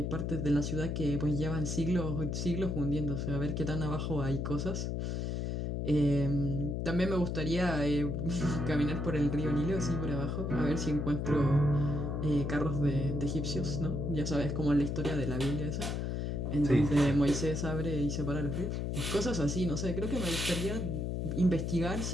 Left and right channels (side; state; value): left; noise; hum, 1 dB below the sound